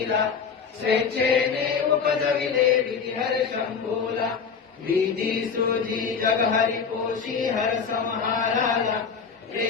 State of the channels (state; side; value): quieter; right; 6.0 dB